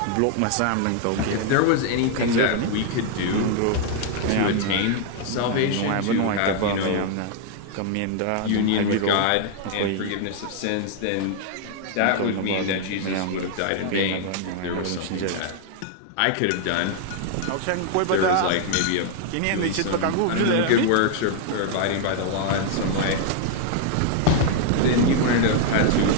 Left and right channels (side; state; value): both; different; correlation 0.00